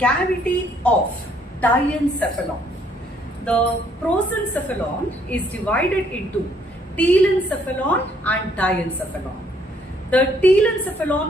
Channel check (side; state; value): both; normal; correlation 0.66